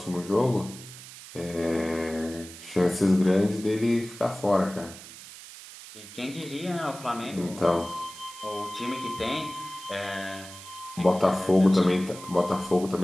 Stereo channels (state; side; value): noise; right; hiss, 15 dB below the sound